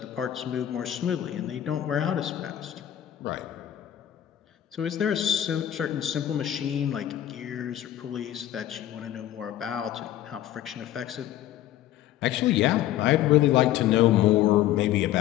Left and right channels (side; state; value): right; quieter; 12.5 dB